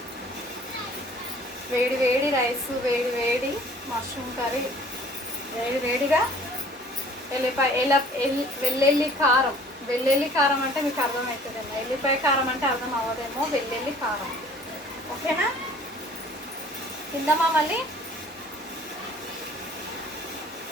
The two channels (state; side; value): normal; both; correlation 0.52